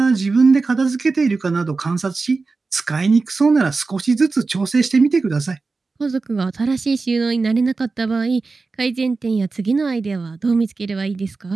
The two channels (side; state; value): left; quieter; 4.0 dB